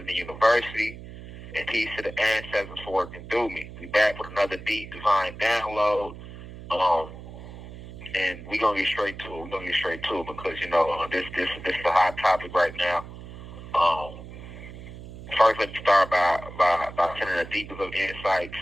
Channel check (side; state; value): right; noise; hum, 14 dB below the sound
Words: the university. And peace to the ancestors for working through me. We back with another deep divine download. And we're gonna get straight to it. Because this is a hot topic right now. First, let me start by sending the deepest of insight